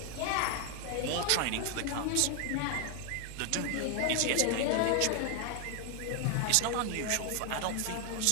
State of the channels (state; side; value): different; both; correlation 0.00